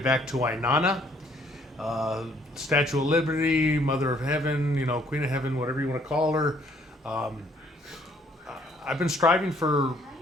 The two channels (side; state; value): both; normal; correlation 0.63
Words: to Inanna, uh, Statue of Liberty, Mother of Heaven, Queen of Heaven, whatever you want to call her. Um, I've been striving for